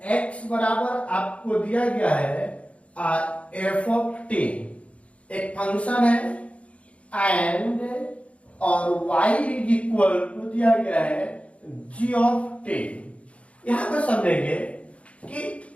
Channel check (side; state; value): right; late; 0.063 ms